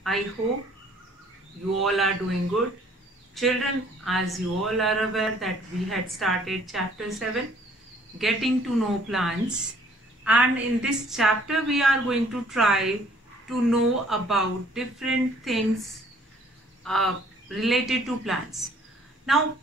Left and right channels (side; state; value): both; normal; correlation 0.59